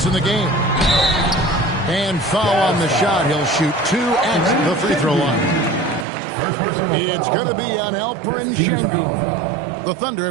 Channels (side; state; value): left; drops out; at 6.1 s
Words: in the game. And foul on the shot. He'll shoot 2 at the free throw line. It's going to be on Alperen Şengün. The Thunder